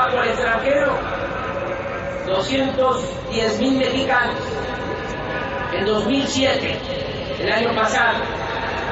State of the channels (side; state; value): both; identical; correlation 1.00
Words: al extranjero 210.000 mexicanos. En 2007, el año pasado,